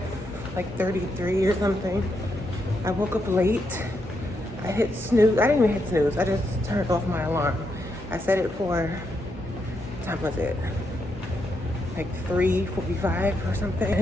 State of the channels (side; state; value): both; normal; correlation 0.81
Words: or something. I woke up late. I hit snooze. I didn't even hit snooze. I just turned off my alarm. I set it for, what time was it? Like 3:45 or